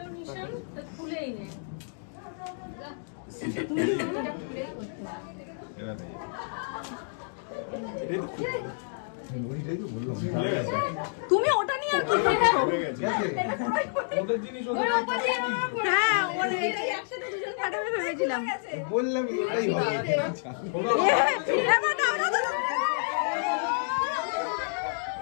নিশান, তো খুলেই নে। তুমি ওটা নিয়ে আর কি করছো? হ্যাঁ ওটা একসাথে দুজন ফাটাবে ভেবেছিলাম। বললাম এটাই হবে। এবার দাও, দাও, দাও।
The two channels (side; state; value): right; silent; digital silence